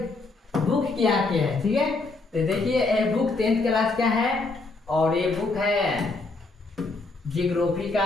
बुक क्या है, ठीक है, तो देखिए ये बुक 10th क्लास का है और ये बुक है जियोग्राफी का।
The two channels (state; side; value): quieter; right; 3.5 dB